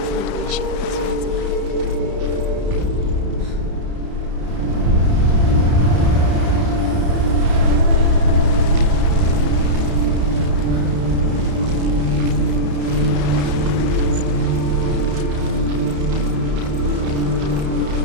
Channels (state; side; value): late; left; 32 ms